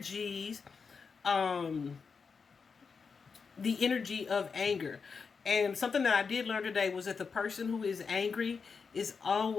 the energy of anger. And something that I did learn today was that the person who is angry is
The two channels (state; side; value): quieter; right; 5.4 dB